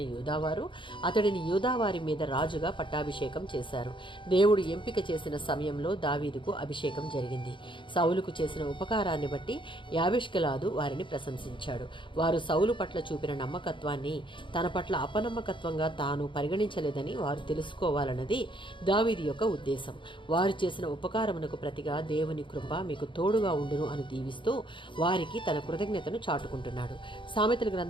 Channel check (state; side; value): late; right; 0.24 ms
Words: యూదావారు అతడిని యూదావారి మీద రాజుగా పట్టాభిషేకం చేశారు. దేవుడు ఎంపిక చేసిన సమయంలో దావీదుకు అభిషేకం జరిగింది. సౌలుకు చేసిన ఉపకారాన్ని బట్టి యాబేష్గిలాదు వారిని ప్రశంసించాడు. వారు సౌలు పట్ల చూపిన నమ్మకత్వాన్ని తన పట్ల అపనమ్మకత్వంగా తాను పరిగణించలేదని వారు తెలుసుకోవాలన్నది దావీదు యొక్క ఉద్దేశం. వారు చేసిన ఉపకారమునకు ప్రతిగా దేవుని కృప మీకు తోడుగా ఉండును అని దీవిస్తూ వారికి తన కృతజ్ఞతను చాటుకుంటున్నాడు. సామెతల